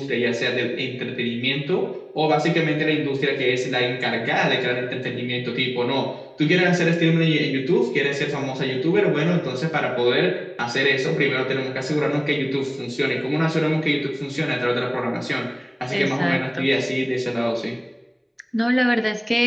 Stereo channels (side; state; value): both; identical; correlation 1.00